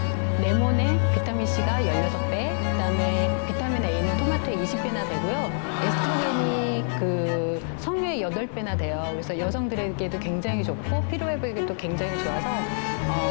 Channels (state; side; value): silent; right; 61 dB below the other